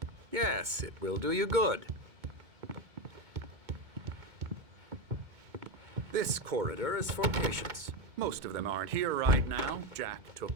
Yes, it will do you good. This corridor is for patients. Most of them aren't here right now. Jack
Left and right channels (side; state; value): left; late; 2.2 ms